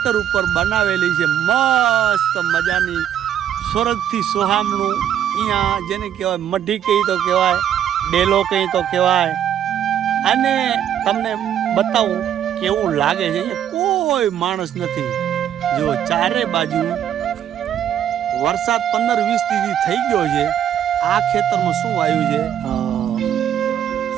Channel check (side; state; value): left; quieter; 10.0 dB